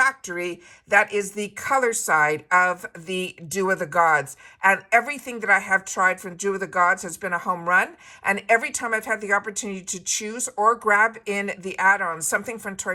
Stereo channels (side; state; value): both; identical; correlation 1.00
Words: that is the color side of the Dew of the Gods. And everything that I have tried from Dew of the Gods has been a home run. And every time I've had the opportunity to choose or grab in the add-ons, something from Toy